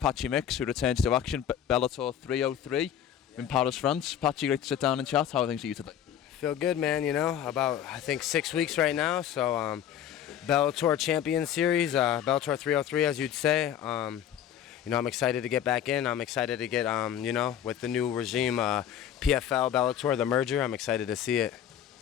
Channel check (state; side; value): quieter; right; 9.9 dB